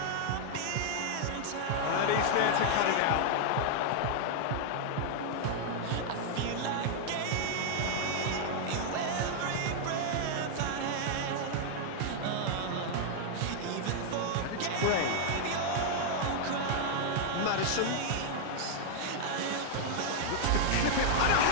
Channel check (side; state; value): both; different; correlation 0.00